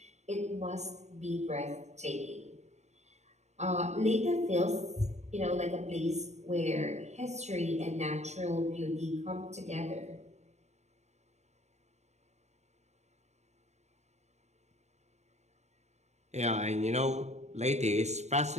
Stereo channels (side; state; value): left; late; 0.33 ms